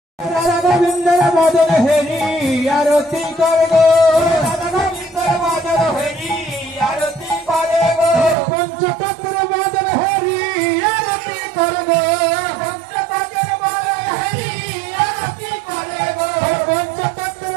রাধা গোবিন্দর মদন হেরি আরতি করে গো, রাধা গোবিন্দর মদন হেরি আরতি করে গো, পঞ্চতত্ত্বের মদন হেরি আরতি করে গো, পঞ্চতত্ত্বের মদন হেরি আরতি করে গো, পঞ্চতত্ত্বের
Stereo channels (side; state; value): left; drops out; at 8.3 s